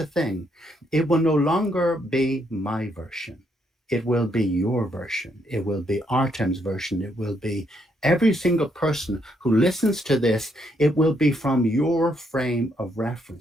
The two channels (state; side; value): normal; both; correlation 0.75